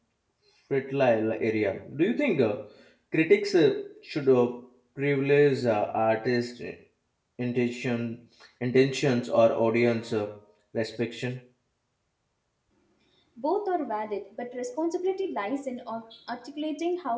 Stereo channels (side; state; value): both; identical; correlation 1.00